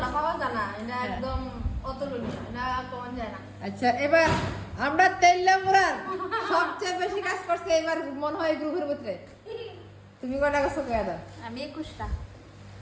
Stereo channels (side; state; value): both; identical; correlation 1.00